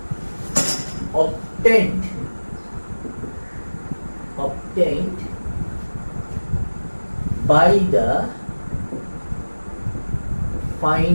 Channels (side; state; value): both; inverted; correlation -1.00